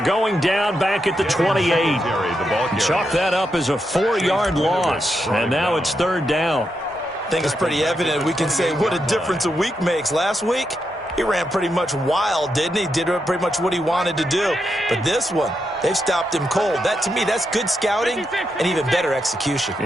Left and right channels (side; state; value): both; normal; correlation 0.84